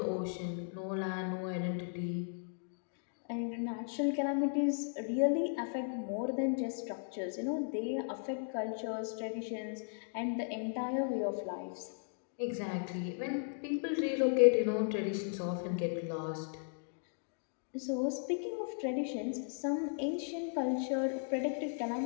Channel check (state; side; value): silent; right; digital silence